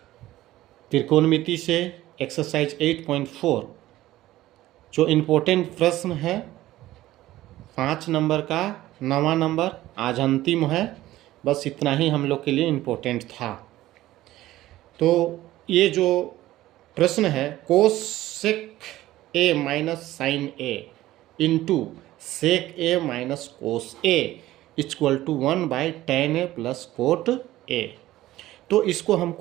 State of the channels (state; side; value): quieter; left; 15.6 dB